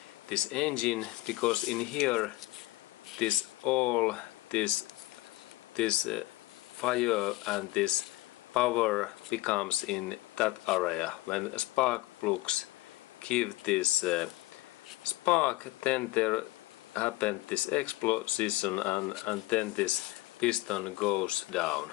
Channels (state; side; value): quieter; right; 19.4 dB